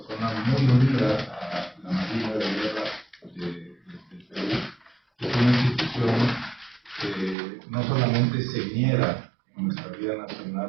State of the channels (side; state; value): left; drops out; at 7.4 s